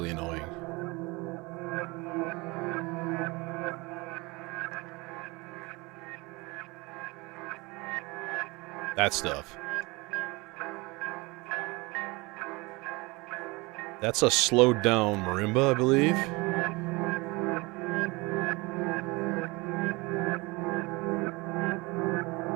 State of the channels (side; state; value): left; quieter; 24.9 dB